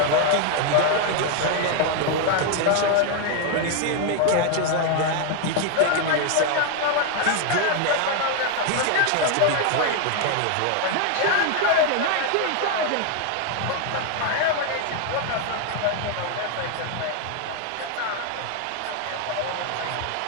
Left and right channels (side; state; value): both; different; correlation 0.01